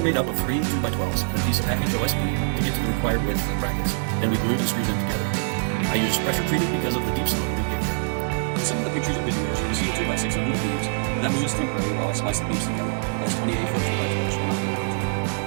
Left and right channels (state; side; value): silent; left; 62 dB below the other